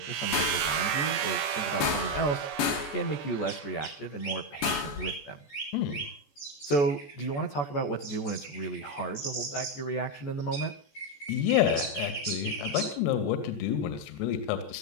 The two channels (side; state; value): right; late; 14 ms